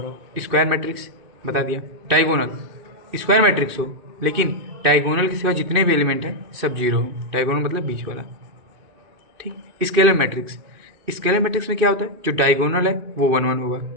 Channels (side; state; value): left; late; 2.6 ms